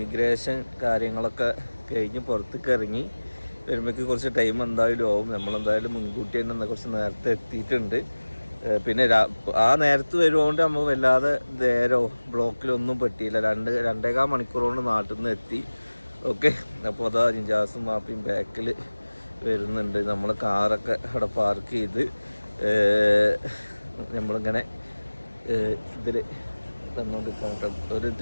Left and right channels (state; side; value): inverted; both; correlation -1.00